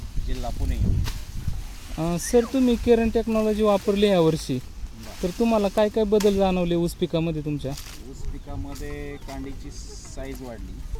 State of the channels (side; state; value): both; identical; correlation 1.00